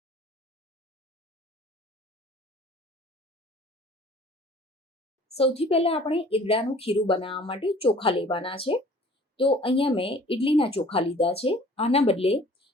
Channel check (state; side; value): normal; both; correlation 0.50